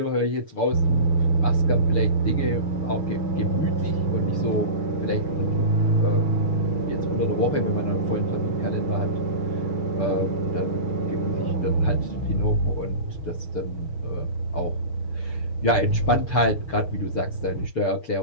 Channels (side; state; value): right; late; 6.8 ms